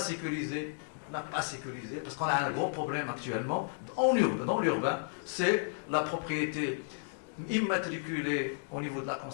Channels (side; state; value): right; silent; digital silence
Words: parce qu'on a un gros problème actuellement dans l'urbain, c'est la propriété immatriculée au niveau de la